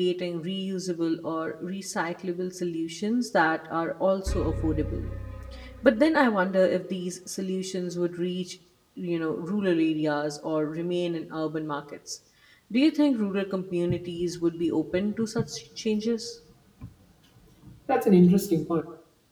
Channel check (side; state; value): both; identical; correlation 1.00